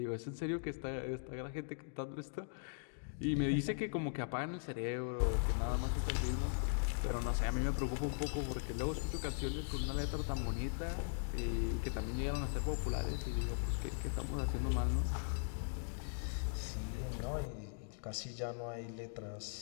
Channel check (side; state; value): right; silent; digital silence